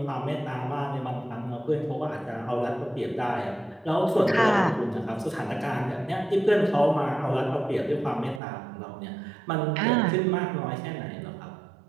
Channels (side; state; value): left; drops out; at 8.4 s